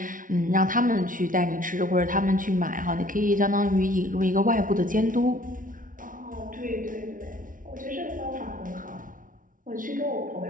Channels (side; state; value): left; late; 0.39 ms